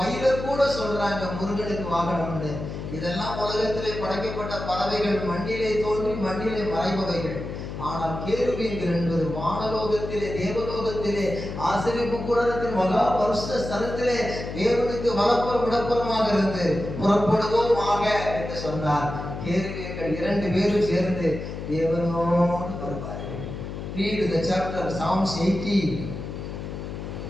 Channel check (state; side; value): noise; left; hum, 7 dB below the sound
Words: கூட சொல்றாங்க முருகனுக்கு வாகனம்னு. இதெல்லாம் உலகத்திலே படைக்கப்பட்ட பறவைகள், மண்ணிலே தோன்றி மண்ணிலே மறைபவைகள். ஆனால் கேருபீன்கள் என்பது வானலோகத்திலே, தேவலோகத்திலே, ஆசரிப்பு கூடாரத்தின் மகா வருஷ ஸ்தலத்திலே தேவனுக்கு வலப்புறம் இடப்புறமாக இருந்து புறப்படுவோமாக என்று சொன்னார். கேருபீன்கள் 2 பேரும் சேர்ந்து தேவனோடு வருவார்கள். Read the chapter Psalms 80.